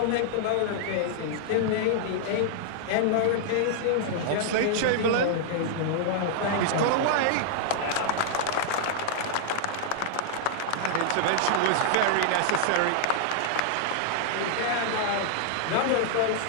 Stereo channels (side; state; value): both; different; correlation -0.01